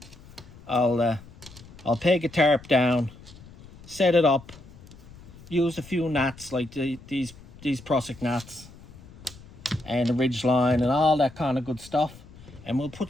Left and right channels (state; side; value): noise; left; rumble, 20 dB below the sound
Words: I'll I'll peg a tarp down, set it up, use a few knots like these Prusik knots and the ridge line and all that kind of good stuff, and we'll